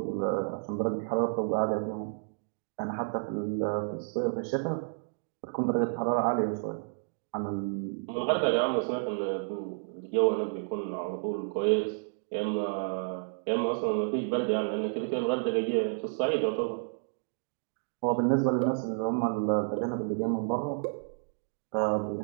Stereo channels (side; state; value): left; silent; digital silence